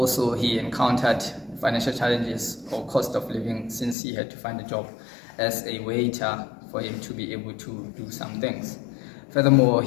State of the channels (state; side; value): drops out; right; at 4.0 s